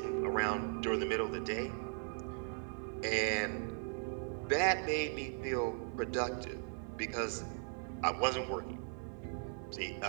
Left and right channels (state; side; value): silent; left; 52 dB below the other